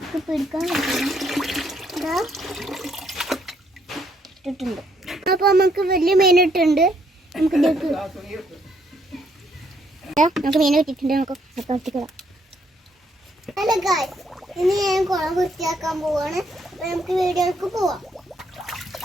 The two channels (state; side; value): normal; both; correlation 0.71